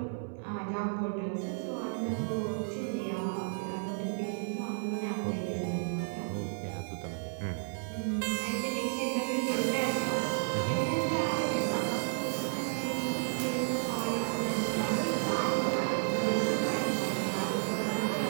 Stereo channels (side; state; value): left; silent; digital silence